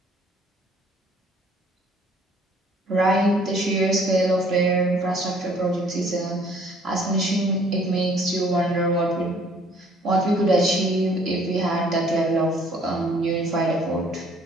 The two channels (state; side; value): normal; both; correlation 0.59